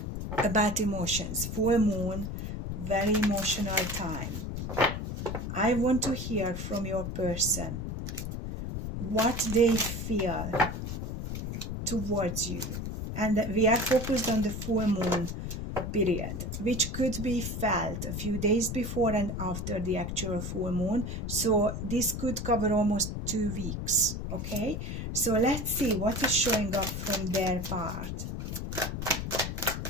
about emotions. Full moon, very emotional time. I want to hear from your person what they feel towards you. And we are focused on the full moon period, which could be felt a few days before and after the actual full moon. So this could cover almost 2 weeks. Okay, so let's see what is showing up from their part.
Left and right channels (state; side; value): noise; left; rumble, 5 dB below the sound